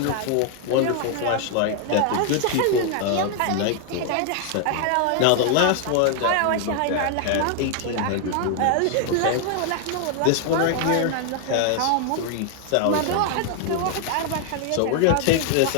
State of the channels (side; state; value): both; different; correlation 0.00